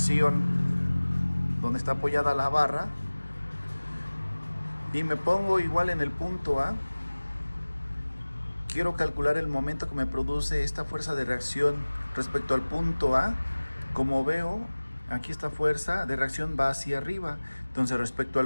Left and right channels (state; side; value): inverted; both; correlation -1.00